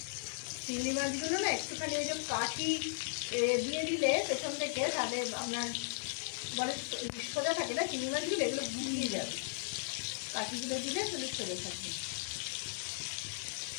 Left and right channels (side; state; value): right; silent; digital silence